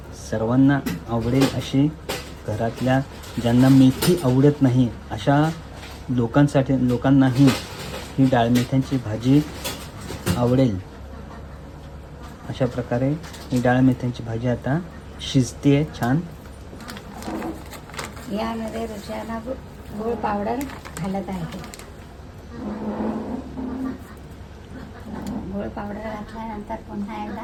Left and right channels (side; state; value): both; identical; correlation 1.00